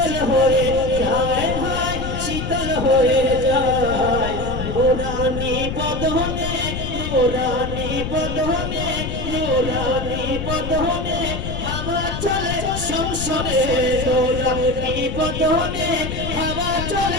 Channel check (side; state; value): left; noise; rumble, 5 dB below the sound